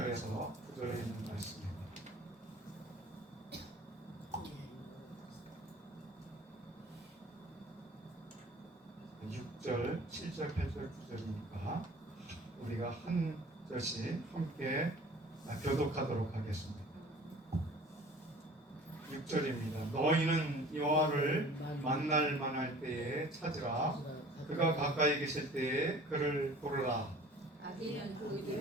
9절에 있는 말씀입니다. 6절, 7절, 8절, 9절이니까 우리가 한 절씩 함께 교독하도록 하겠습니다. 6절입니다. 너희는 여호와를 만날 만할 때에 찾으라. 그가 가까이 계실 때에 그를 부르라. 악인은 그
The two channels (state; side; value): normal; both; correlation 0.46